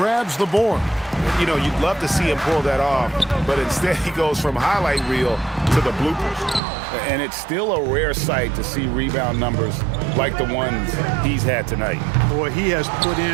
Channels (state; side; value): drops out; left; at 6.6 s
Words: the board. You know, you'd love to see him pull that off, but instead he goes from highlight reel to the bloopers. And it's still a rare sight to see rebound numbers like the ones he's had tonight. Boy, he has put